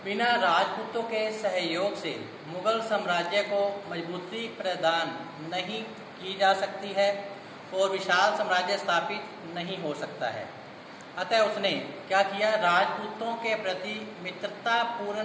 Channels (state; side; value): identical; both; correlation 1.00